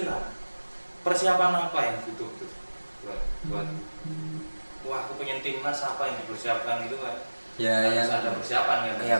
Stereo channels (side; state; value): both; inverted; correlation -1.00